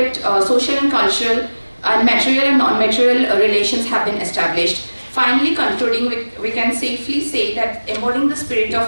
social and cultural and material and non-material relations have been established. Finally, concluding, we can safely say that embodying the spirit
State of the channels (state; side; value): inverted; both; correlation -1.00